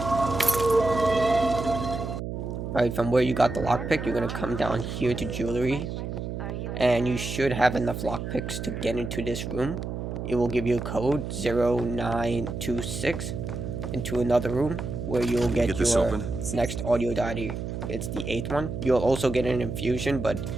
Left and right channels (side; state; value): right; noise; hum, 5 dB below the sound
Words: Alright, from where you got the lockpick, you're gonna come down here to jewelry. And you should have enough lockpicks to get into this room. It will give you a code 0926 into another room where you'll get your next audio diary. It's the 8th one. You'll also get an infusion, but